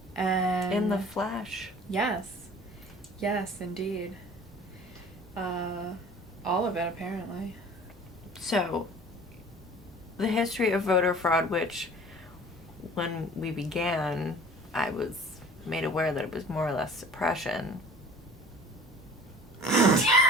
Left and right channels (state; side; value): normal; both; correlation 0.45